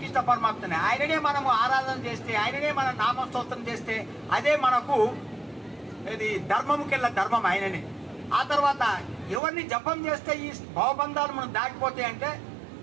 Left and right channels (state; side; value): drops out; left; at 9.4 s